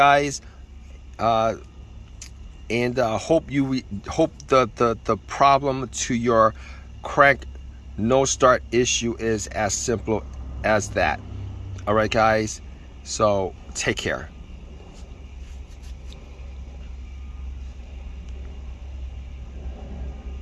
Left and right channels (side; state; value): both; identical; correlation 1.00